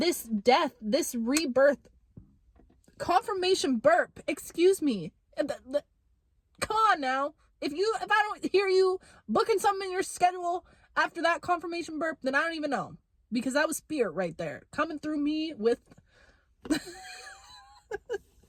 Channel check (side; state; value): both; identical; correlation 1.00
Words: death, this rebirth, confirmation burp. Excuse me. Come on now. If I don't hear you booking something in your schedule after that confirmation burp, then I don't even know. Because that was spirit right there. Coming through me with...